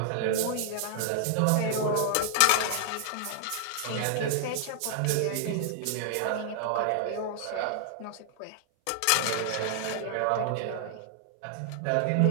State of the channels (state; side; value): different; both; correlation 0.00